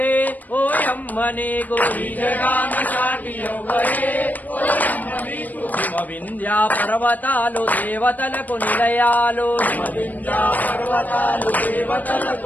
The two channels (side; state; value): right; late; 0.082 ms